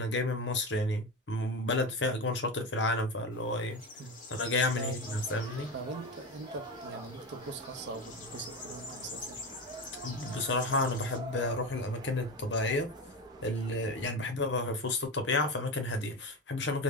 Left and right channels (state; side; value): normal; both; correlation 0.22